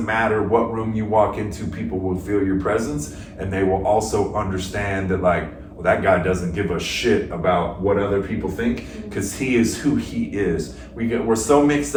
matter what room you walk into, people will feel your presence, and they will also understand that like, well, that guy doesn't give a shit about what other people think because he is who he is. We're so mixed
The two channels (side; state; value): both; identical; correlation 1.00